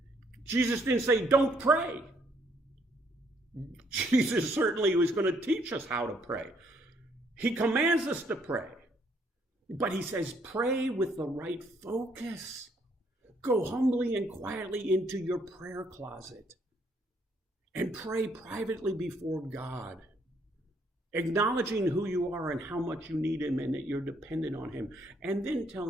Jesus didn't say, don't pray. Jesus certainly was going to teach us how to pray. He commands us to pray. But he says, pray with the right focus. Go humbly and quietly into your prayer closet and pray privately before God, acknowledging who you are and how much you need him and that you're dependent on him. And then tell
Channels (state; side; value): normal; both; correlation 0.68